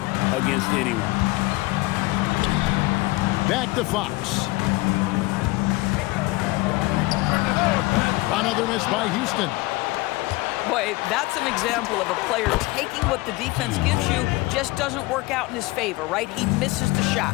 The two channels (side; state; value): right; quieter; 21.6 dB